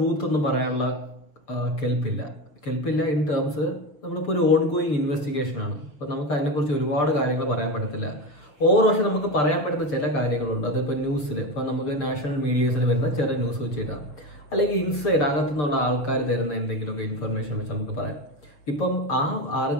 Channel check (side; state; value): right; late; 6.5 ms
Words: ഒന്നും പറയാനുള്ള കെൽപ്പില്ല ഇൻ ടേംസ് നമ്മളിപ്പോൾ ഒരു ഓൺ ഗോയിങ് ഇൻവെസ്റ്റിഗേഷൻ ആണ്. അപ്പോൾ നമുക്ക് അതിനെക്കുറിച്ച് ഒരുപാട് കാര്യങ്ങൾ പറയാൻ പറ്റത്തില്ല. ഓരോ പക്ഷേ നമുക്ക് പറയാൻ പറ്റുന്ന ചില കാര്യങ്ങളുണ്ട്. അതിപ്പോൾ ന്യൂസിൽ ഇപ്പോൾ നമുക്ക് നാഷണൽ മീഡിയസിൽ വരുന്ന ചെറിയ ന്യൂസ് വെച്ചിട്ടാണ്, അല്ലെങ്കിൽ ഇൻസൈഡ് അകത്തുനിന്നുള്ള ആൾക്കാർ തരുന്ന എന്തെങ്കിലുമൊക്കെ ഇൻഫർമേഷൻ വെച്ച് നമുക്ക് പറയാം. ഇപ്പം ആ